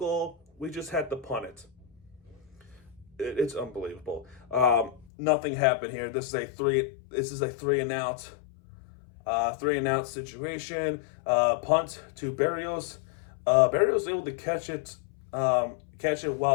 we just had to punt it. It's unbelievable. Nothing happened here. This is a three and out. 3-and-out situation. Punt to Berrios. Berrios was able to catch it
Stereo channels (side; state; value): right; drops out; at 5.1 s